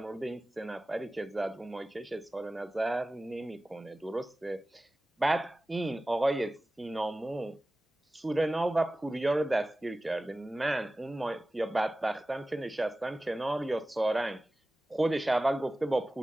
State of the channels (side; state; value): both; normal; correlation 0.97